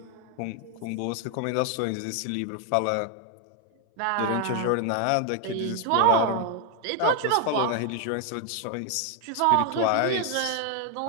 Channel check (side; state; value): both; different; correlation 0.00